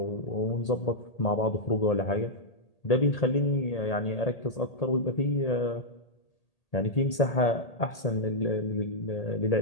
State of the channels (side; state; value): right; late; 1.8 ms